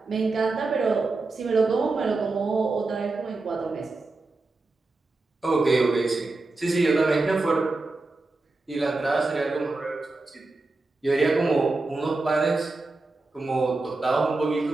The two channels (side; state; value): left; quieter; 3.4 dB